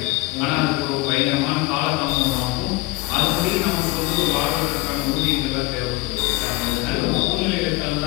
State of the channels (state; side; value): quieter; right; 21.4 dB